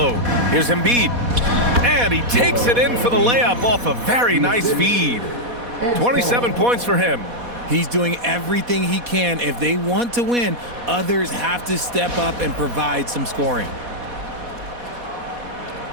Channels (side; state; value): left; late; 4.1 ms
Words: Here's Embiid. And he takes it in for the layup off a very nice feed. 27 points for him. He's doing everything he can. If they want to win, others have to step up and provide some scoring.